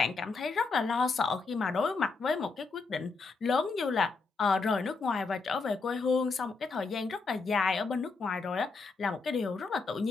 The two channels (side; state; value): right; quieter; 4.2 dB